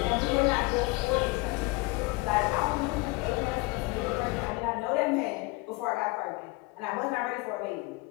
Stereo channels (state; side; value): quieter; right; 24.4 dB